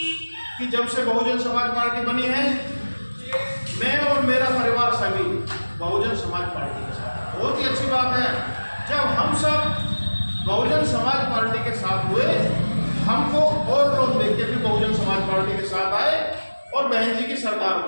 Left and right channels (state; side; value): inverted; both; correlation -1.00